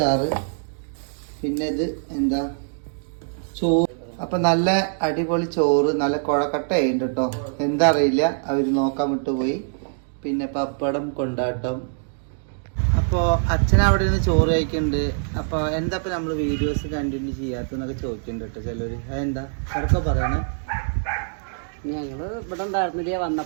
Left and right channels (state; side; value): silent; left; digital silence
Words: പിന്നെ ഇത് എന്താ ചോറ്. അപ്പൊ നല്ല അടിപൊളി ചോറ്, നല്ല കുഴക്കട്ട ഉണ്ട് കേട്ടോ. എന്താ അറിയില്ല, അവര് നോക്കാൻ വിട്ടുപോയി. പിന്നെ പപ്പടം കൊണ്ടാട്ടം. അപ്പോൾ അച്ഛൻ അവിടെ നിന്ന് ചോറ് കഴിക്കുന്നുണ്ട്. അപ്പോൾ എന്താ ഇപ്പം നമ്മൾ വീഡിയോസ് കണ്ടിന്യൂ ചെയ്യാത്തതെന്നൊക്കെ ചോദിക്കുന്നുണ്ട് കേട്ടോ ചിലർ. അതെന്താ അതൊക്കെ പറയണേ? ഞങ്ങൾ ഇവിടെ ഉണ്ടായിരുന്നില്ല,